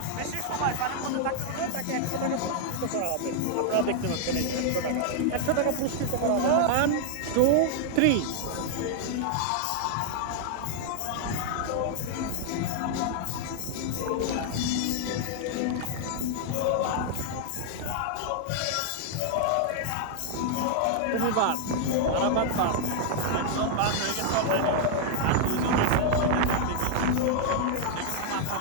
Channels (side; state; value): both; different; correlation 0.00